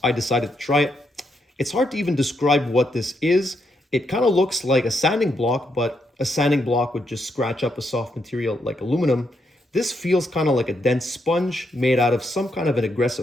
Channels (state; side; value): normal; both; correlation 0.79